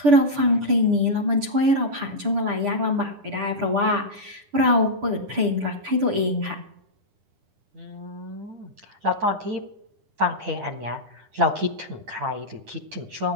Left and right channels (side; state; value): left; late; 10 ms